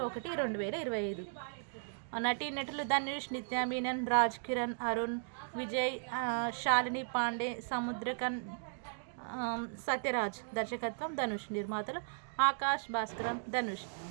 1, 2025. నటీనటులు ధనుష్, నిత్యా మీనన్, రాజ్ కిరణ్, అరుణ్ విజయ్, శాలిని పాండే, సముద్రకన్, సత్యరాజ్. దర్శకత్వం ధనుష్. నిర్మాతలు ఆకాష్ భాస్కరన్, ధనుష్.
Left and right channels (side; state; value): left; silent; digital silence